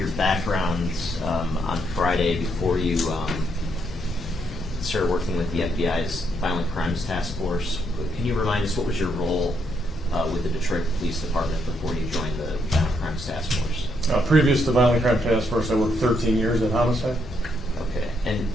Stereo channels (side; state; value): both; normal; correlation 0.76